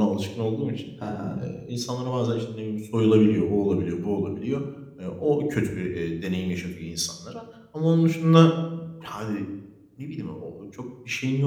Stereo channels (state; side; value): identical; both; correlation 1.00